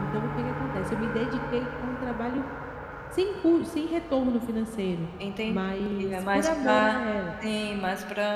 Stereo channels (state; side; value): identical; both; correlation 1.00